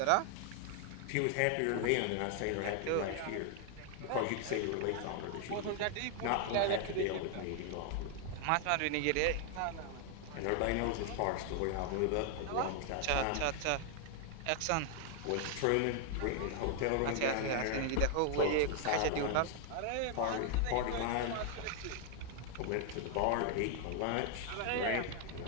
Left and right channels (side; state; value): both; different; correlation 0.00